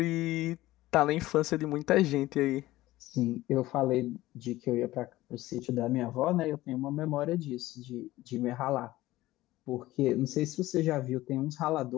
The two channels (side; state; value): right; quieter; 17.0 dB